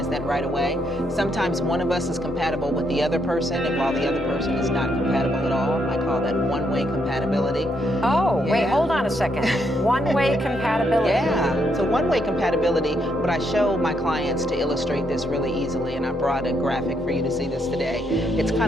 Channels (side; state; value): both; normal; correlation 0.76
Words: that right away. Sometimes one of us is compatible with the other person, and while the other person is not compatible at all. I call that one-way compatibility. Oh, Yeah. wait, hold on a second. One-way compatibility. Yeah, so one-way compatibility, what I show my clients to illustrate this really easily, and I brought a graphic for you to see this today. It's